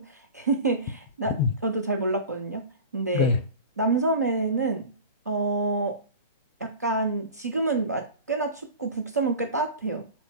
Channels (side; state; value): both; inverted; correlation -0.33